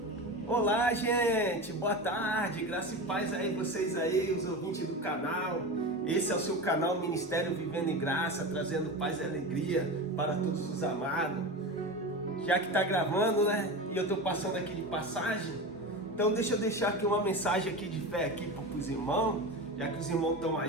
Olá, gente! Boa tarde! Graça e paz aí, vocês aí, os ouvintes do canal. Esse é o seu canal Ministério Vivendo em Graça, trazendo paz e alegria para todos os amados. Já que tá gravando, né? E eu tô passando aqui de passagem, então deixa eu deixar aqui uma mensagem aqui de fé aqui para os irmãos, já que os irmãos estão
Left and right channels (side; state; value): both; normal; correlation 0.25